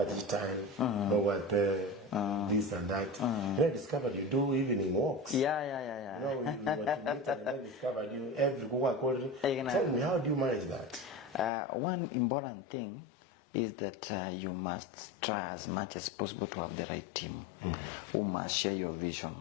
the time, over this and that. I discovered you do evening walks. Yeah. I discovered you every Tell me, how do you manage that? One important thing is that you must try as much as possible to have the right team who must share your vision,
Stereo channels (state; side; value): drops out; right; at 11.5 s